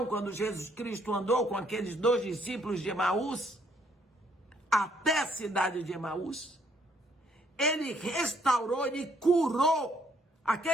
quando Jesus Cristo andou com aqueles 2 discípulos de Emaús, até a cidade de Emaús? Ele restaurou, ele curou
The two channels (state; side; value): normal; both; correlation 0.67